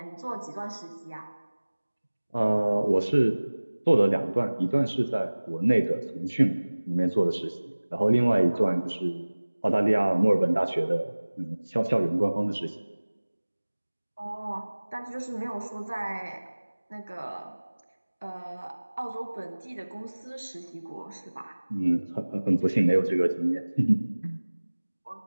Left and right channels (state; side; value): inverted; both; correlation -1.00